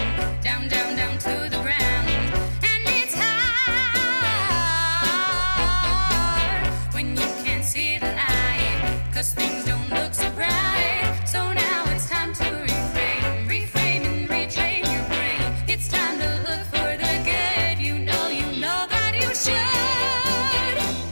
down, down, down to the ground. And it's hard when you can't see the light, 'cause things don't look so bright. So now it's time to reframe and retrain your brain. It's time to look for the good. You know that you should.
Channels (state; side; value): inverted; both; correlation -1.00